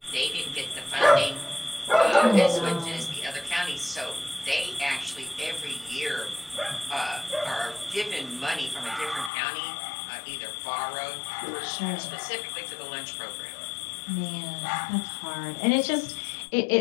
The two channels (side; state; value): right; drops out; at 9.3 s